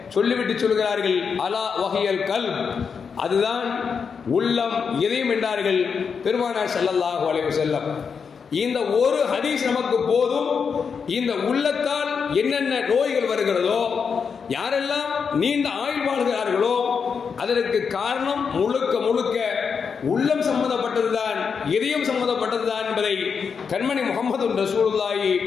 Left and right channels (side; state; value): right; quieter; 6.1 dB